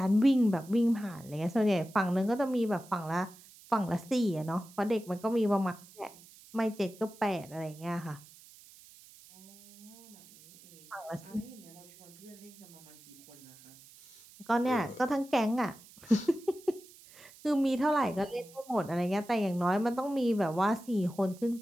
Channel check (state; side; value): noise; right; hiss, 22 dB below the sound